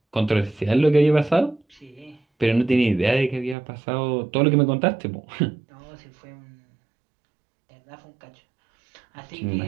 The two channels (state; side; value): drops out; left; at 3.6 s